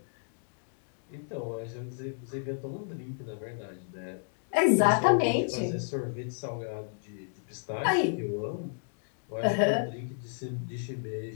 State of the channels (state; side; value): silent; right; digital silence